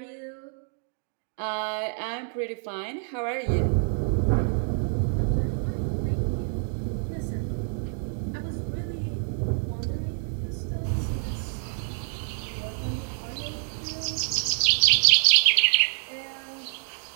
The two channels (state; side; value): silent; left; 58 dB below the other